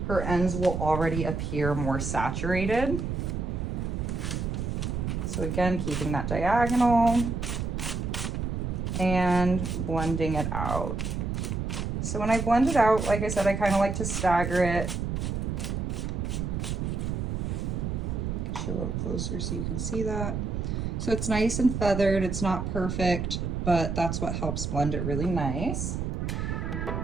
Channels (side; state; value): right; noise; rumble, 2 dB below the sound